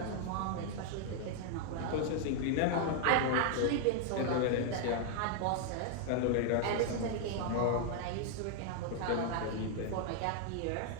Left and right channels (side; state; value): both; different; correlation 0.00